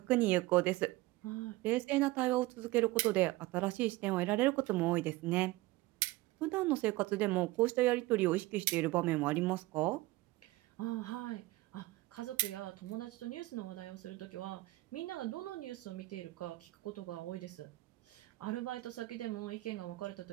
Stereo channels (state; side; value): quieter; left; 19.4 dB